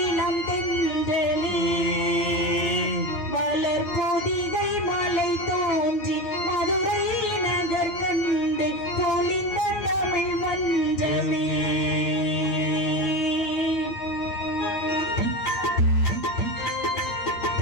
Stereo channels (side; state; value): right; late; 9.1 ms